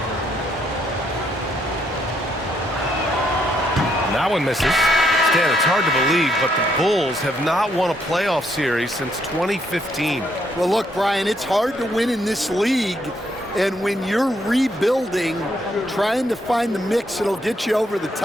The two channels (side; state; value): both; normal; correlation 0.73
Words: That one misses. Stan, it's hard to believe, but the Bulls have not won a playoff series since 2015. Well, look, Brian, it's hard to win in this league. And when you're rebuilding, trying to find the mix that'll get you over the